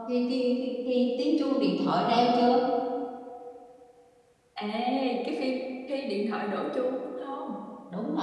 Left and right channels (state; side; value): identical; both; correlation 1.00